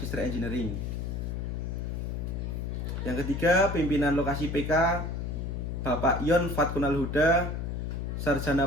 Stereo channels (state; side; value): noise; left; hum, 3 dB below the sound